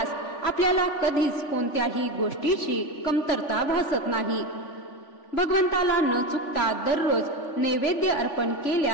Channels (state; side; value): late; right; 3.5 ms